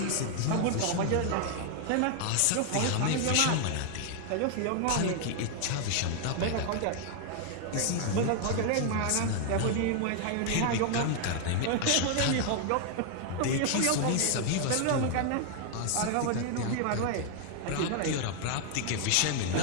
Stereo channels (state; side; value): different; both; correlation 0.00